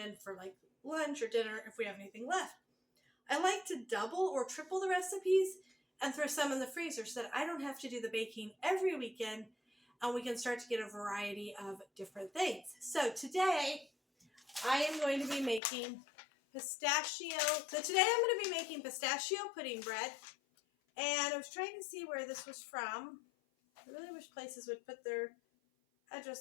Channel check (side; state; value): right; drops out; at 15.6 s